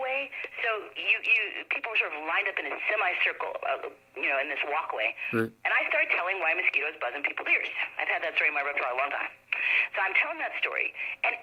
So people were sort of lined up in a semicircle, in this walkway. Mm. And I started telling why mosquitoes buzz in people's ears. I've had that story in my repertoire a long time. So I'm telling that story, and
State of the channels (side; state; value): both; identical; correlation 1.00